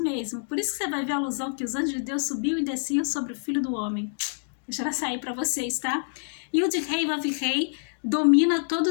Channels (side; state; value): right; silent; digital silence